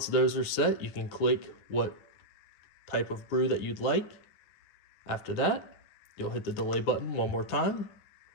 those are set, you can click what type of brew that you'd like. After that, you'll hit the delay button one more time.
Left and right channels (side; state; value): right; late; 10 ms